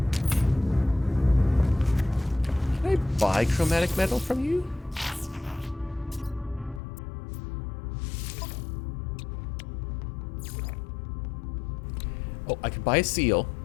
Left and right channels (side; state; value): right; drops out; at 6.8 s